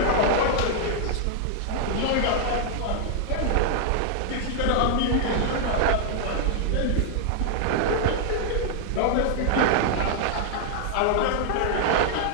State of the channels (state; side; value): different; both; correlation 0.00